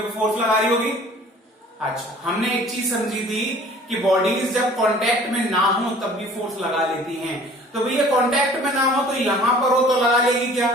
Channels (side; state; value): both; normal; correlation 0.49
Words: को फोर्स लगा रही होगी। अच्छा, हमने एक चीज समझी थी कि बॉडीज जब कांटेक्ट में ना हो तब भी फोर्स लगा लेती हैं। तो भैया कांटेक्ट में ना हो तो यहां पर हो तो लगा लेगी क्या,